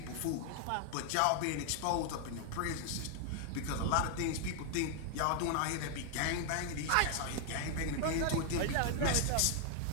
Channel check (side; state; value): both; different; correlation 0.00